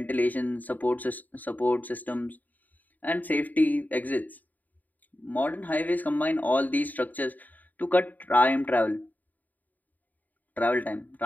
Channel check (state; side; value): late; right; 0.083 ms